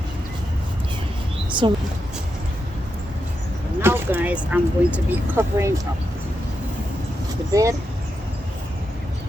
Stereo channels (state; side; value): normal; both; correlation 0.86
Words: so now guys, I'm going to be covering up the bed.